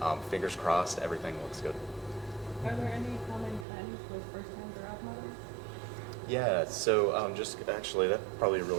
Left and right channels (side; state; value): left; drops out; at 3.7 s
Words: fingers crossed, everything looks good. Are there any common trends with first-time giraffe mothers? Yeah, so just actually, that's probably a